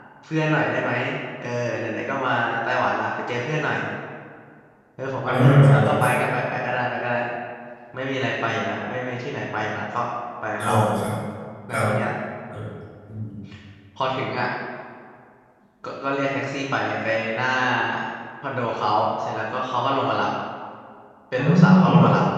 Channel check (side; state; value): both; identical; correlation 1.00